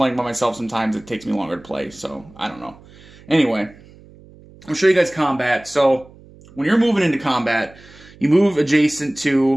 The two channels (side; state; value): right; noise; hum, 23 dB below the sound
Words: by myself. Sometimes it takes me longer to play, so I don't know. Anyway, I'll show you guys combat. So when you're moving into combat, you move adjacent